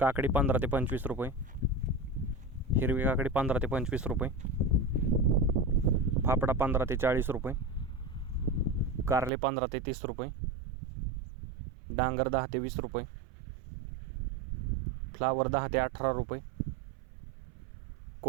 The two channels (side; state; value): left; drops out; at 9.3 s